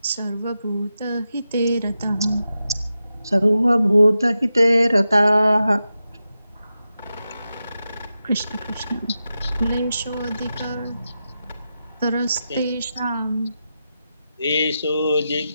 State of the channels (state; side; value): inverted; both; correlation -0.90